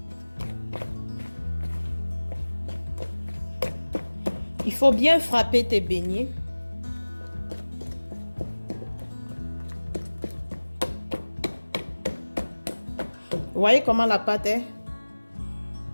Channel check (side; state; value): both; inverted; correlation -1.00